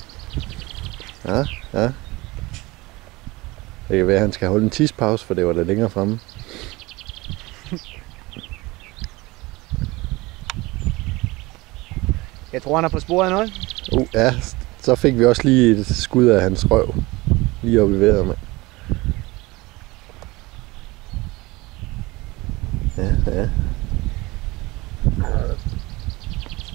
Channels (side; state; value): left; quieter; 22.1 dB